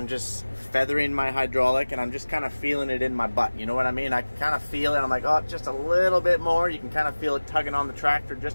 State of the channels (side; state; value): both; inverted; correlation -1.00